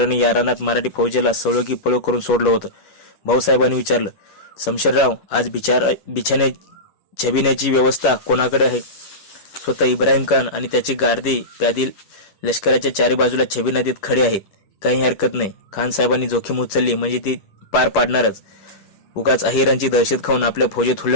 या रानात मराठी फौजेला सळो की पळो करून सोडलं होतं. भाऊसाहेबांनी विचारलं, शमशेरराव, आज बिछाने छबिण्याची व्यवस्था कोणाकडे आहे? स्वतः इब्राहिम खान आणि त्याची गार्दी प्यादी लष्कराच्या 4 बाजूला छबी नदीत खडे आहेत. काही हरकत नाही. खान साहेबांनी जोखीम उचलली म्हणजे ती पार पाडणारच. उगाच अहिरांची दहशत खाऊन आपल्या फौजेत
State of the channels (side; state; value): right; late; 10 ms